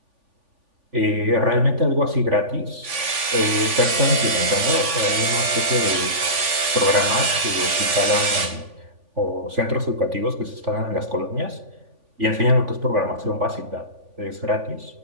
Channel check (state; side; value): late; left; 3.5 ms